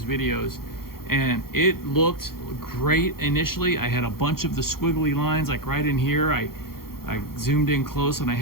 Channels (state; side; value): late; right; 0.93 ms